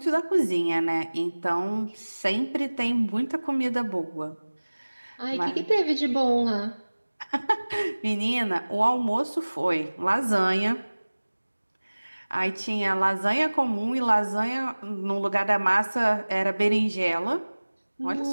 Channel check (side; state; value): both; inverted; correlation -1.00